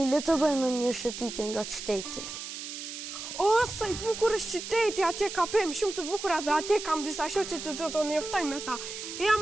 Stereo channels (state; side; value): noise; right; hiss, 8 dB below the sound